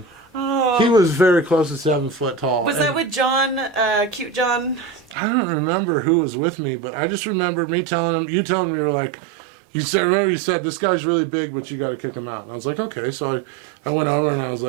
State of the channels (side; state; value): left; drops out; at 5.2 s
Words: Oh. He was very close to 7 foot tall. Was And that with John, cute John? I don't remember who was with me, but I just remember me telling him. You telling me you were like, you said. Remember you said this guy's really big, but you got to kick him out. And I was like, okay. So I went over and I was